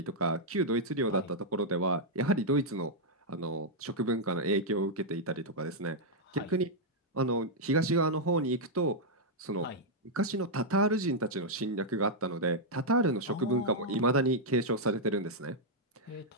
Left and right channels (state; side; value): normal; both; correlation -0.05